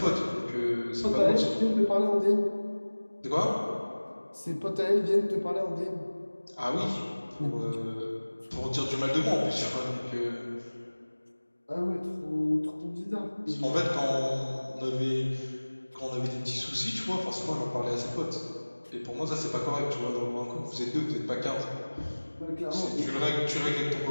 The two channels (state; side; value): inverted; both; correlation -1.00